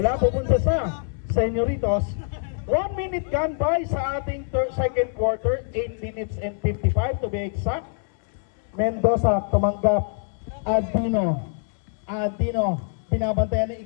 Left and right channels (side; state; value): right; silent; 62 dB below the other